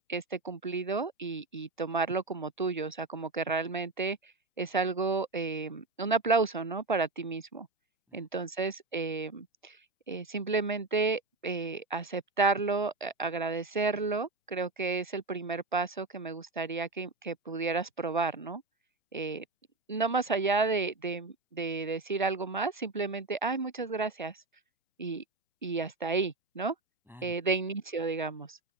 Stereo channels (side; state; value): left; quieter; 3.6 dB